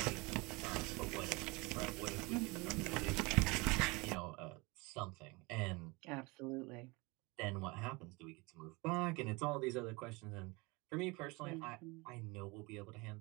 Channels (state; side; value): quieter; left; 25.8 dB